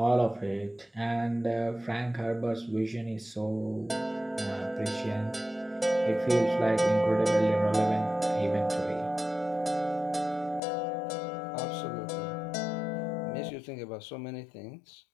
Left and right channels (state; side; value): drops out; right; at 10.6 s